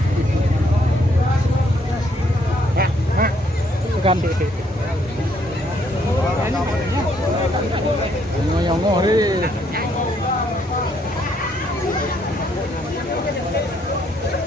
Bukan. Nyongo deh.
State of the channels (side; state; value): both; normal; correlation 0.70